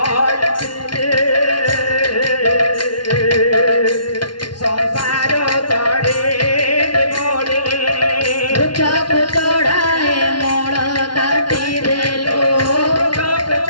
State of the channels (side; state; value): right; late; 0.72 ms